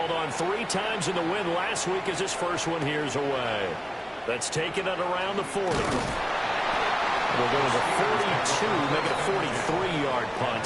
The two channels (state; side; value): identical; both; correlation 1.00